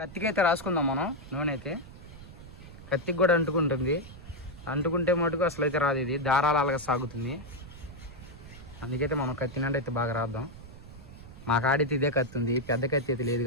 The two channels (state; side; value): noise; right; rumble, 16 dB below the sound